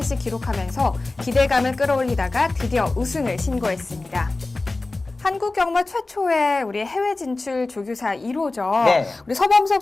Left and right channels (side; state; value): right; quieter; 3.2 dB